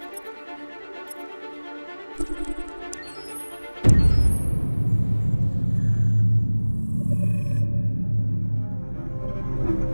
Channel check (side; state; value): both; inverted; correlation -1.00